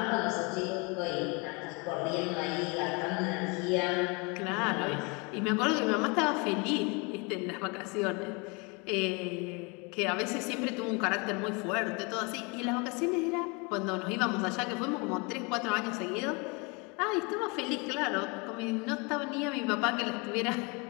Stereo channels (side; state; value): right; quieter; 29.9 dB